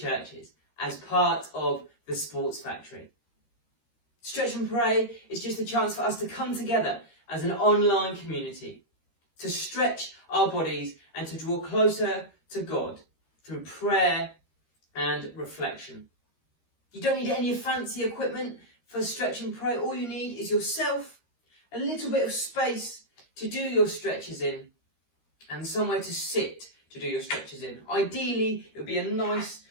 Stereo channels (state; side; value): late; right; 13 ms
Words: as part of the Sports Factory. Stretch and Pray is just a chance for us to come together as an online community, to stretch our bodies and to draw closer to God through prayer and reflection. You don't need any fancy equipment for Stretch and Pray, all you need is yourself, a little bit of space to do your stretches in, and somewhere to sit to do your stretches in. Ideally, it would be a nice,